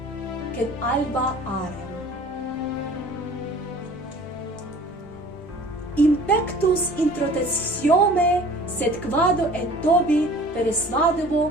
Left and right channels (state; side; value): normal; both; correlation 0.47